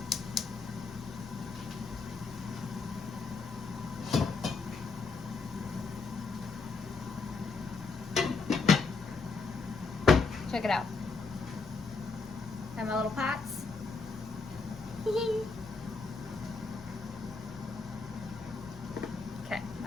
Check it out. Have my little pots. Okay,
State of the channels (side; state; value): right; quieter; 4.3 dB